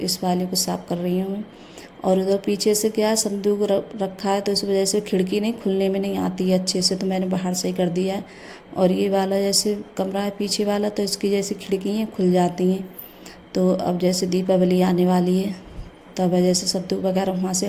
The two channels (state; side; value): identical; both; correlation 1.00